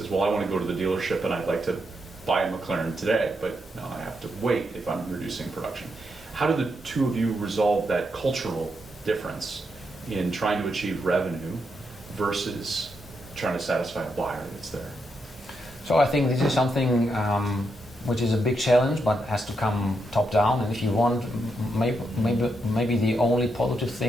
well, I want to go to the dealership and I'd like to buy a McLaren today, but no, I have to wait if I'm reducing production. How do the two of you resolve that cultural difference in trying to achieve revenue versus trying to satisfy a buyer that's there? So I think this is something which is a big challenge, but has to come top down. And if you want, maybe the only positive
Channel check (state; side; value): normal; both; correlation 0.81